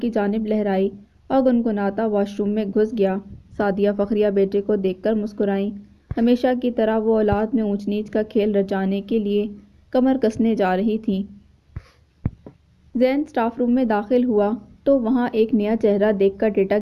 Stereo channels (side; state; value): both; identical; correlation 1.00